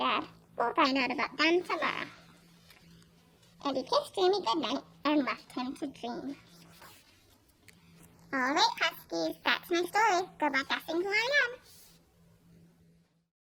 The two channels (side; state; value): both; identical; correlation 1.00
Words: We'll find out about them tomorrow. And he kissed Jamie goodnight and left him to dream. All right, Huskies, that's my story. Good luck guessing who I am.